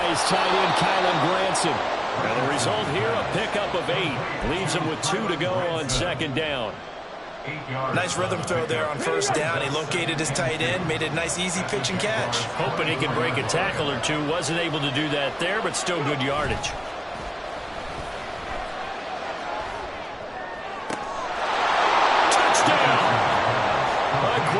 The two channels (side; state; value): both; identical; correlation 1.00